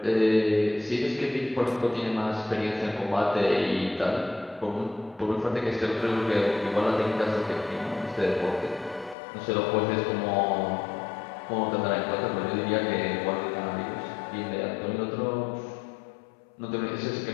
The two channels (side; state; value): right; drops out; at 9.2 s